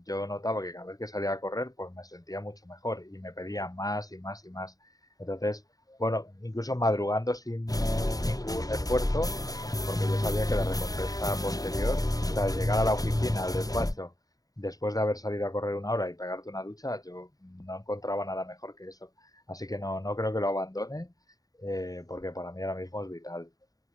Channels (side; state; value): right; late; 0.18 ms